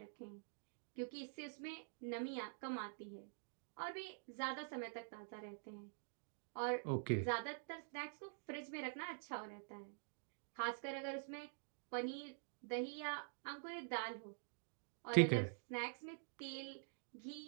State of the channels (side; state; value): left; silent; digital silence